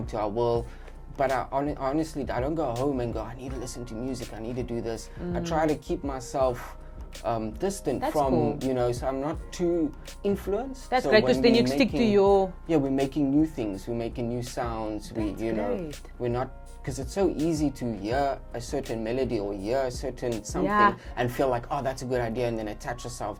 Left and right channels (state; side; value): identical; both; correlation 1.00